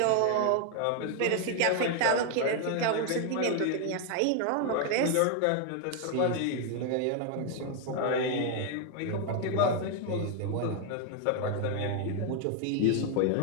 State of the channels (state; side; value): different; both; correlation 0.01